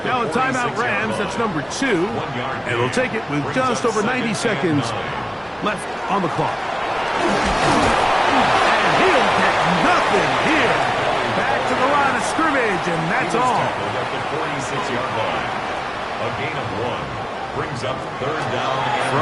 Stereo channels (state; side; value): identical; both; correlation 1.00